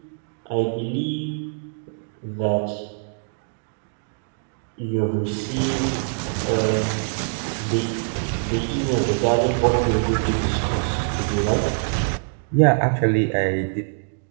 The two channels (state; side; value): silent; left; digital silence